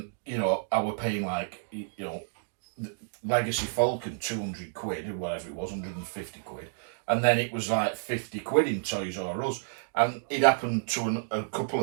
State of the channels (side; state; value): left; silent; digital silence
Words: were paying Legacy Falcon £200 or whatever it was, £150, and then it was like £50 in Toys R Us, and it happened to a couple